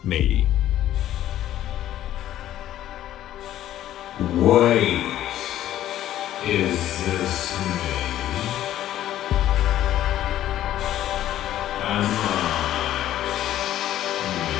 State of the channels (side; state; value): right; quieter; 12.6 dB